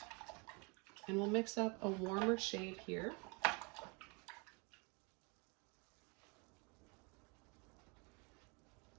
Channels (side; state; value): left; quieter; 30.9 dB